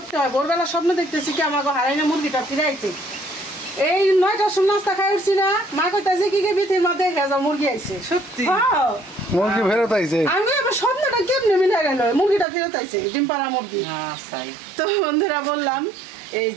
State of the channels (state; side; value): drops out; left; at 12.5 s